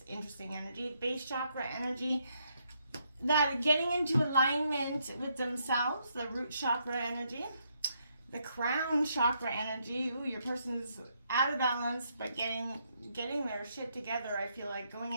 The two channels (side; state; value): both; inverted; correlation -0.75